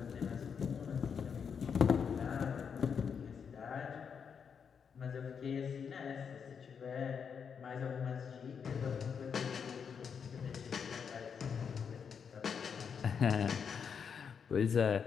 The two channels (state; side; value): quieter; right; 6.7 dB